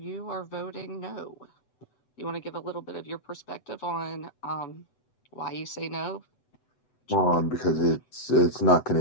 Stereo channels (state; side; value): late; right; 7.9 ms